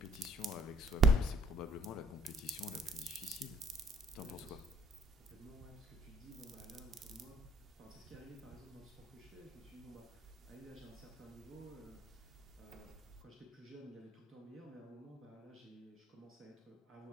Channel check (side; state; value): both; normal; correlation 0.62